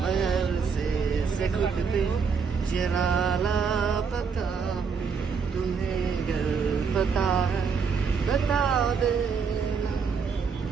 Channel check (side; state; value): left; quieter; 5.8 dB